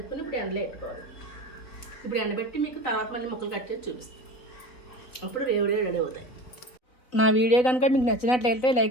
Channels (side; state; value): right; late; 4.0 ms